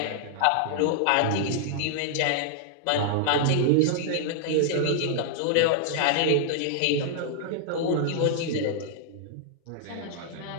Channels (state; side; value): different; both; correlation -0.01